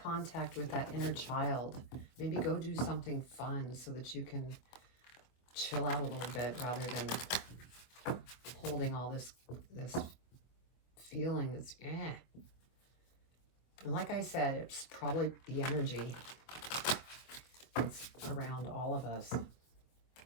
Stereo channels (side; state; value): right; late; 24 ms